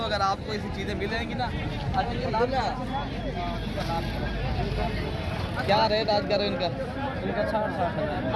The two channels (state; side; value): identical; both; correlation 1.00